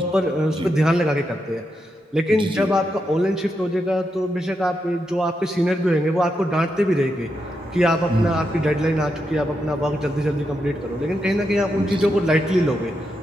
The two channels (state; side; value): normal; both; correlation 0.84